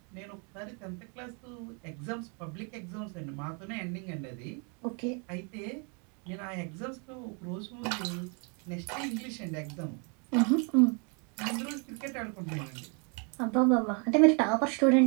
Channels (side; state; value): left; quieter; 36.1 dB